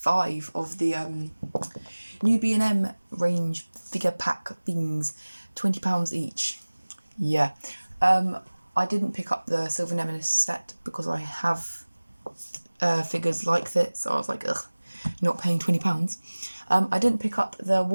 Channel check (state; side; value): inverted; both; correlation -1.00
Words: of the new B&M range figure pack things, £20 each. Yeah. I didn't pick up the Silver Nemesis set because I have figures like this, so I was like, ugh, not paying £20. I didn't pick up the